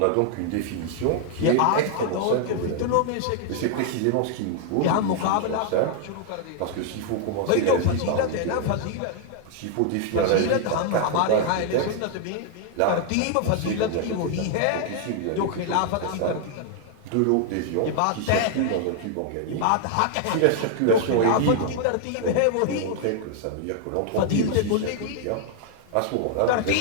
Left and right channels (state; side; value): different; both; correlation 0.00